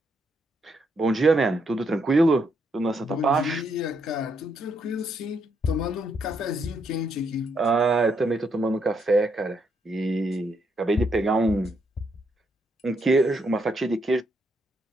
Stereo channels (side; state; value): both; normal; correlation 0.76